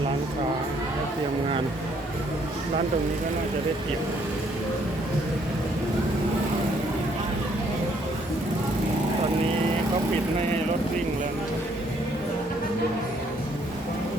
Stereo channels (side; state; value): both; normal; correlation 0.67